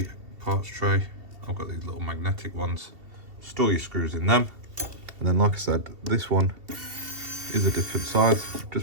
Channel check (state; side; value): late; left; 2.7 ms